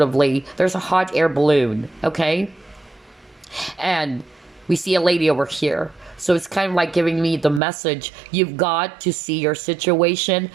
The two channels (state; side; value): drops out; left; at 7.6 s